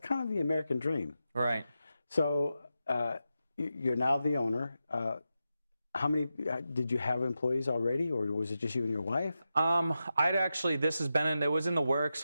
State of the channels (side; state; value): both; inverted; correlation -0.90